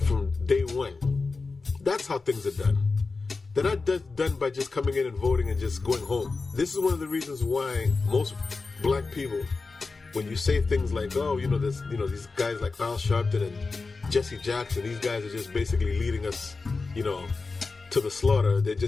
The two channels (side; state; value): right; quieter; 4.0 dB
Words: from day one. That's how things are done. They're not done by just coming in and voting and just going home. This is one of the reasons why most black people, when you say things like, oh, these guys like Al Sharpton and Jesse Jackson, these guys are just basically leading us, to the slaughter. They're